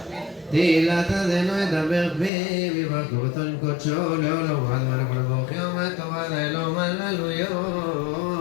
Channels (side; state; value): right; drops out; at 2.3 s